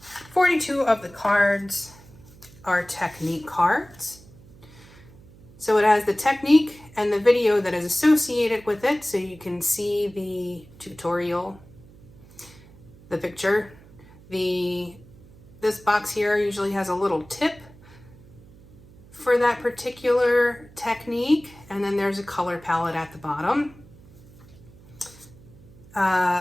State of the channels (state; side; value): noise; right; hum, 23 dB below the sound